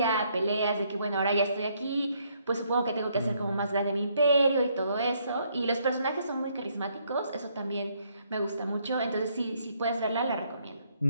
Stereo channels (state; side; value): inverted; both; correlation -0.70